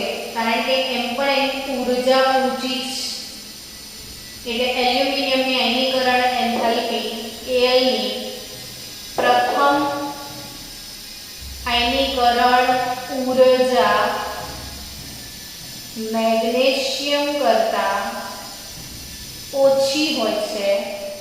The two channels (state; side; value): identical; both; correlation 1.00